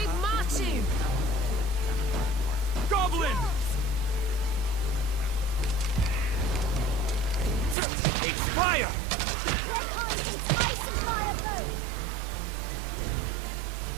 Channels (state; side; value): drops out; left; at 7.8 s